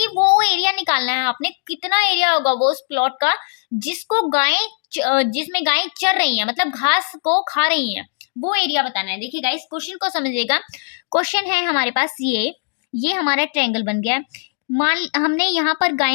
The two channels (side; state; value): right; silent; digital silence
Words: वो एरिया निकालना है आपने, कितना एरिया होगा वो उस प्लॉट का जिसमें गायें चर रही हैं, मतलब घास को खा रही हैं, वो एरिया बताना है। देखिए गाइस, क्वेश्चन को समझिएगा। क्वेश्चन है हमारे पास ये हमारा ट्रायंगल बन गया है। मान हमने यहाँ पर